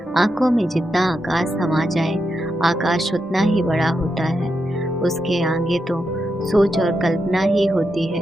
आंखों में जितना आकाश समा जाए, आकाश उतना ही बड़ा होता है। उसके आगे तो सोच और कल्पना ही होती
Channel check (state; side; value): normal; both; correlation 0.85